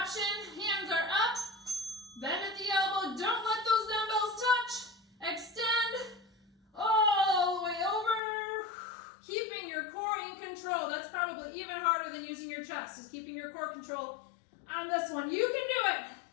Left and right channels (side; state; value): right; drops out; at 8.2 s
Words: option. Hands are up. Bend at the elbow. Don't let those dumbbells touch. Extend all the way over. Keeping your core in control. That's probably even harder than using your chest, is keeping your core control on this one. You can do it.